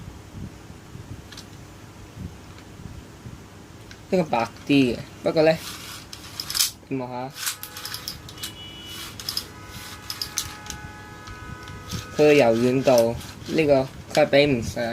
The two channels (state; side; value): identical; both; correlation 1.00